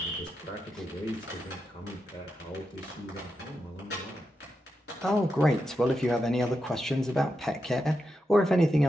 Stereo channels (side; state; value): both; normal; correlation 0.87